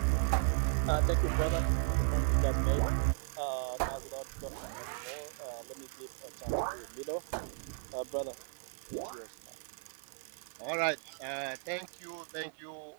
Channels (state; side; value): silent; left; 54 dB below the other